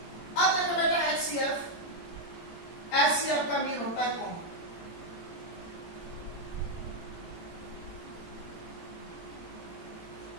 अब देखो बेटा एचसीएफ, एचसीएफ का मीन होता है common.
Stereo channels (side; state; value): right; late; 18 ms